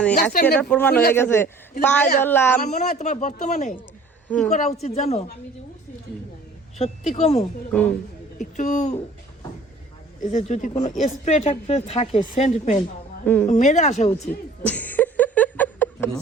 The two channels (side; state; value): left; quieter; 3.1 dB